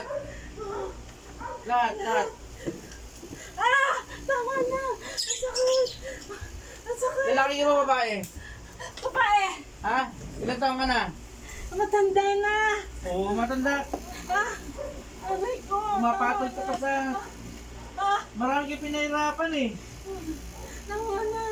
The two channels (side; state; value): both; identical; correlation 1.00